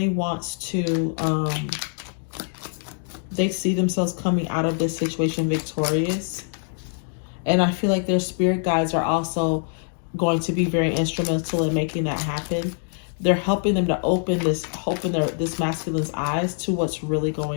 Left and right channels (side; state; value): right; silent; 62 dB below the other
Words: wants to, they see themselves coming out of this situation victorious. And I feel like their spirit guides are also going to be very instrumental in making that happen. They're helping them to open this masculine's eyes to what's really